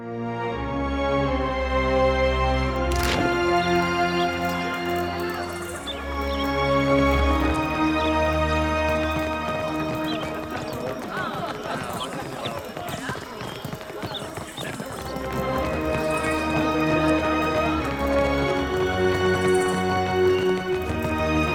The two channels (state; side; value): identical; both; correlation 1.00